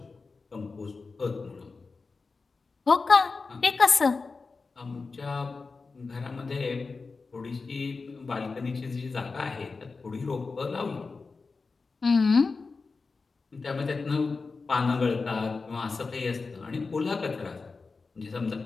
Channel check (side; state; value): right; quieter; 4.3 dB